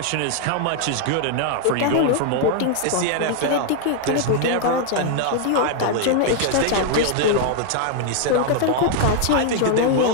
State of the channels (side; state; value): both; different; correlation 0.00